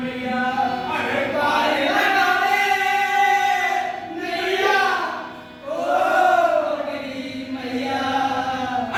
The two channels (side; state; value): both; identical; correlation 1.00